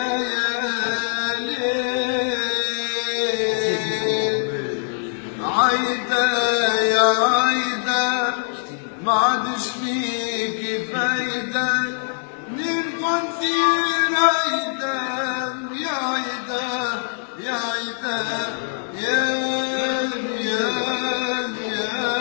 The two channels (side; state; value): right; silent; 57 dB below the other